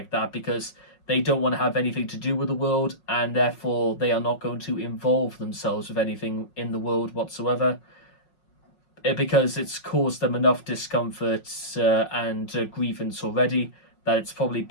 that because they don't want to have anything to do with the world, and therefore they are not going to involve themselves with anything in the world whatsoever, because it's caused them enough discomfort and grievance already that it's probably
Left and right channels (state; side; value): late; right; 5.5 ms